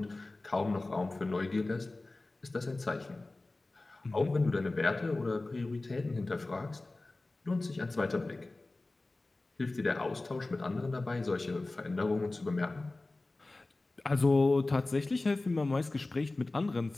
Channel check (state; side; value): quieter; right; 3.1 dB